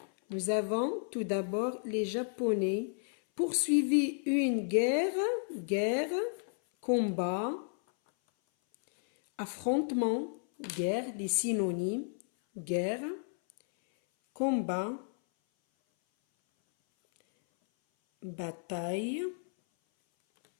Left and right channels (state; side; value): silent; right; 56 dB below the other